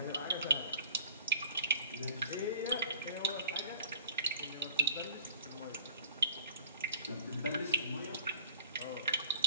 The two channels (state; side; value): inverted; both; correlation -0.43